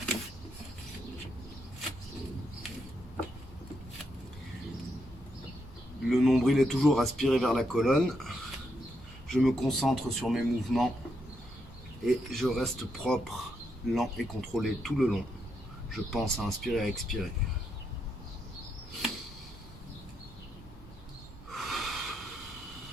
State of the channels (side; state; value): both; normal; correlation 0.80